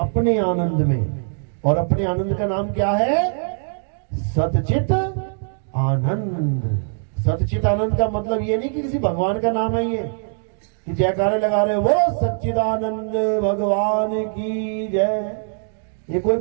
आनंद में। और अपने आनंद का नाम क्या है? सतचित आनंद। सतचित आनंद का मतलब ये नहीं कि किसी भगवान का नाम है ये कि जयकारे लगा रहे वो सच्चिदानंद भगवान की जय। ये कोई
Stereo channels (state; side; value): silent; left; digital silence